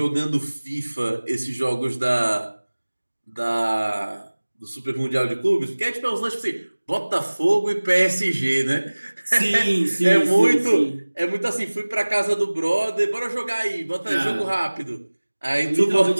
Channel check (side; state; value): both; inverted; correlation -1.00